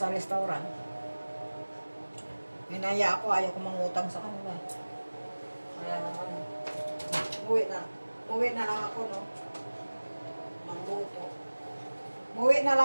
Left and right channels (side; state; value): both; inverted; correlation -1.00